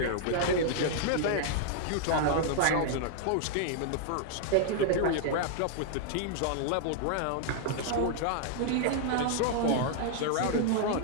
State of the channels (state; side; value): different; both; correlation -0.01